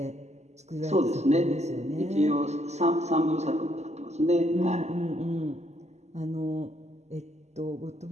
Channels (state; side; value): late; left; 0.33 ms